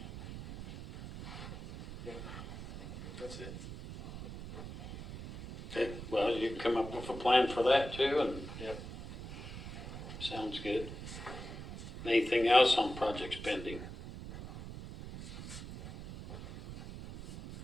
Yeah, that's it. Okay, well, you can come up with a plan for that too, and. Yep. Sounds good. Anything else on projects pending?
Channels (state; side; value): noise; right; rumble, 10 dB below the sound